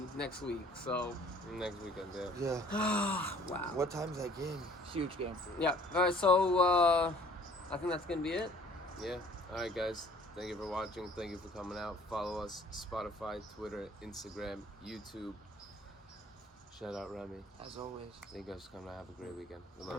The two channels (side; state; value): both; normal; correlation 0.54